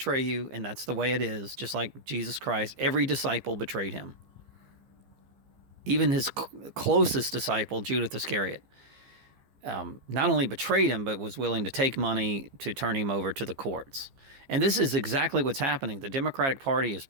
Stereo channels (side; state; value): left; late; 15 ms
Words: you, and that's the way it is. Just like Jesus Christ, every disciple betrayed him. Even his closest disciple, Judas Iscariot, not only betrayed him, but was willing to take money to turn him over to the courts. And this is exactly what's happening. The Democratic Party is